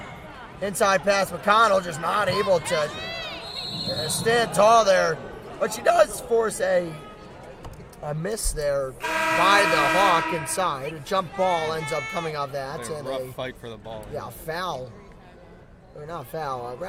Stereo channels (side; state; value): both; identical; correlation 1.00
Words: Inside pass, McConnell just not able to stand tall there. But she does force a miss there by the Hawk inside. A jump ball ends up coming off that. And a rough fight for the ball. Yeah, foul. Or not foul,